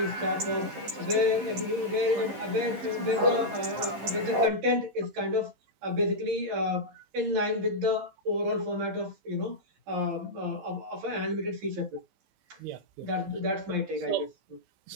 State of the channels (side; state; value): left; late; 15 ms